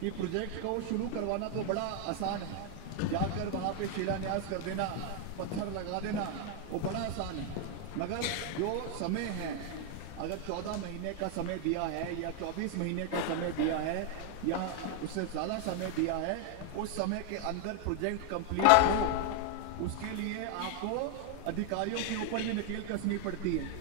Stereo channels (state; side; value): different; both; correlation 0.01